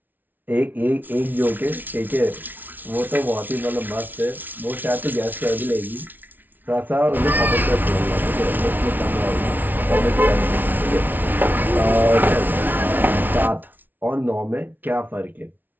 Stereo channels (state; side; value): late; left; 0.086 ms